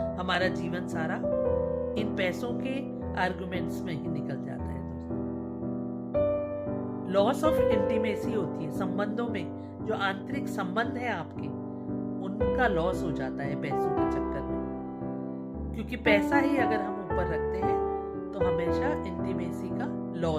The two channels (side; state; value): both; identical; correlation 1.00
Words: हमारा जीवन सारा इन पैसों के आर्ग्यूमेंट्स में ही निकल जाता है दोस्तों। लॉस ऑफ इंटीमेसी होती है, संबंधों में जो आंतरिक संबंध है आपके, उनका लॉस हो जाता है पैसों के चक्कर में। क्योंकि पैसा ही अगर हम ऊपर रखते हैं तो हमेशा इंटीमेसी का